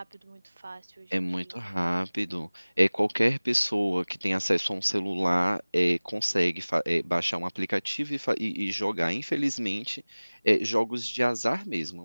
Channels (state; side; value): inverted; both; correlation -1.00